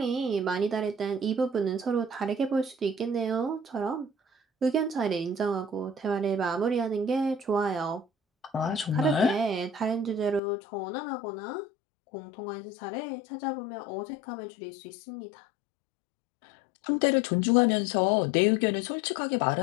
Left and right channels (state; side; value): drops out; right; at 10.4 s